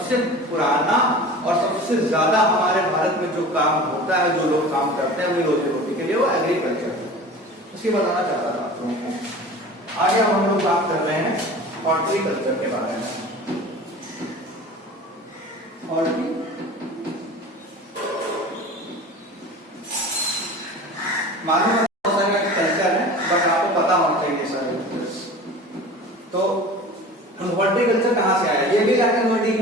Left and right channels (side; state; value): both; normal; correlation 0.38